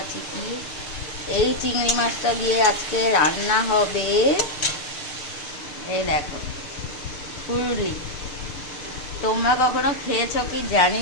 কি। এই চিংড়ি মাছটা দিয়ে আজকে রান্না হবে, এই দেখো, ফুললি। তোমরা কখনো খেয়েছো কি জানি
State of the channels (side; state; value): right; late; 6.7 ms